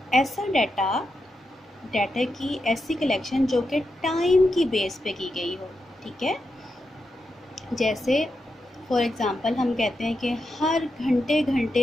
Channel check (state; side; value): normal; both; correlation 0.87